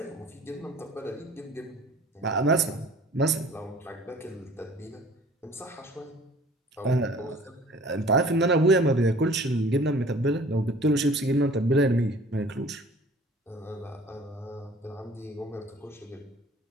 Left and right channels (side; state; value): both; normal; correlation 0.49